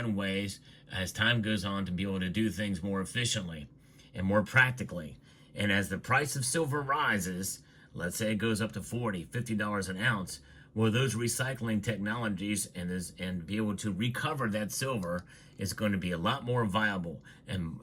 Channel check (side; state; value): both; identical; correlation 1.00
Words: ways as time goes on to be able to do things more efficiently and more practically. And as the price of silver rises, let's say it goes up to $40, $50 an ounce, well, those recycling technologies and be able to recover that silver is going to be a lot more viable